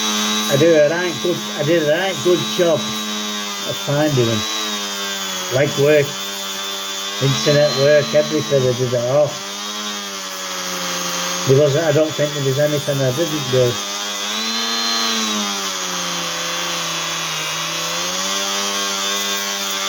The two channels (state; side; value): identical; both; correlation 1.00